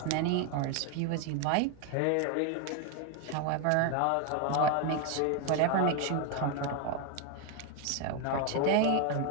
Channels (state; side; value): different; both; correlation 0.01